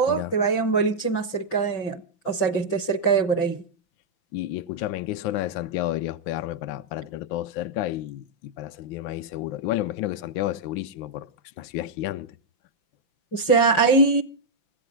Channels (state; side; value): late; right; 5.3 ms